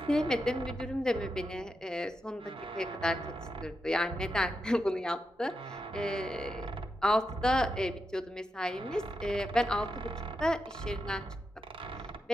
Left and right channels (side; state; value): both; normal; correlation 0.86